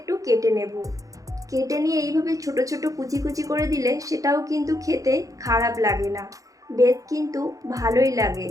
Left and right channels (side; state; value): left; late; 0.16 ms